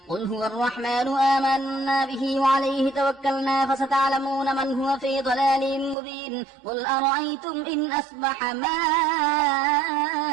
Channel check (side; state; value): left; drops out; at 6.0 s